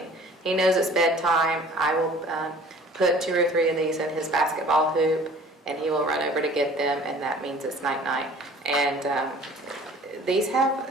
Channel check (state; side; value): normal; both; correlation 0.49